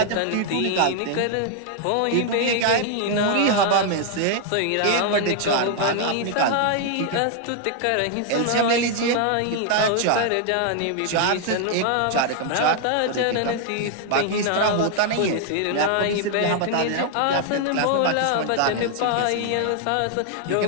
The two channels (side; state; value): both; different; correlation 0.00